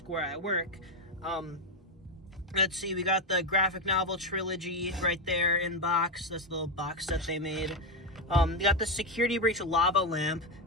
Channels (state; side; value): normal; both; correlation 0.08